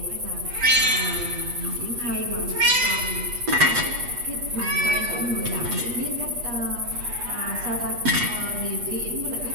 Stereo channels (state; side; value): late; left; 8.3 ms